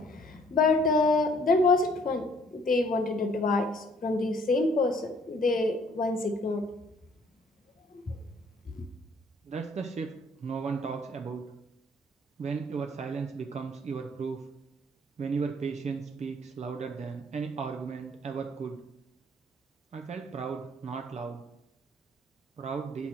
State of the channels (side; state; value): both; normal; correlation 0.60